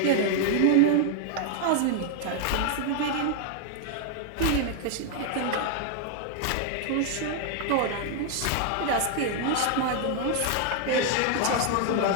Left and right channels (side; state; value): both; different; correlation 0.00